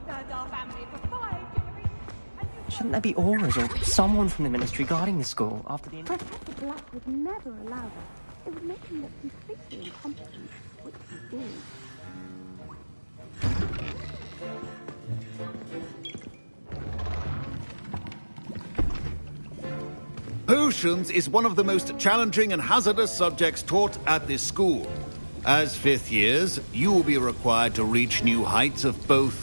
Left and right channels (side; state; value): both; inverted; correlation -1.00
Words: served our family for 5 generations. Shouldn't there be auras or someone from the ministry guarding the school after the... Professor Black would never allow that. It would make him look completely incompetent, which he is. Potions is one of the most challenging and hazardous subjects taught at this school. As fifth years, you will be required to reach new heights of